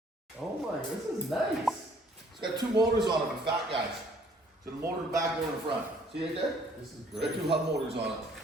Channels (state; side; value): normal; both; correlation 0.60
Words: Oh my, this is nice. It's got 2 motors on it, but fat guys. So the motor in the back, motor in the front. See it there? This is It's great. got 2 hub motors on it.